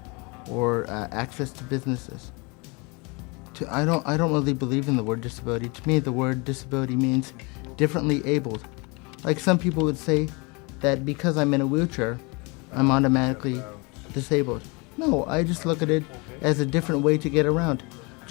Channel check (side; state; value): right; quieter; 28.8 dB